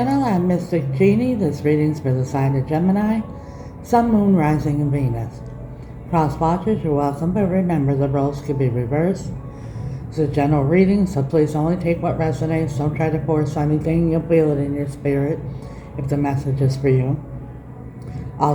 I'm Mystic Genie. This reading's for the sign of Gemini, Sun, Moon, Rising, and Venus. Cross watchers, you're welcome, but remember the roles could be reversed. It's a general reading, so please only take what resonates. Don't try to force anything. You'll feel it in your spirit if the message is for you.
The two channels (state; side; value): identical; both; correlation 1.00